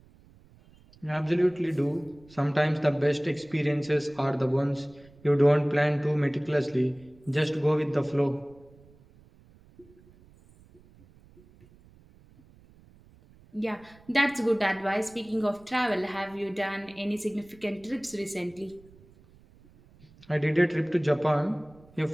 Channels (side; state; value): right; noise; rumble, 26 dB below the sound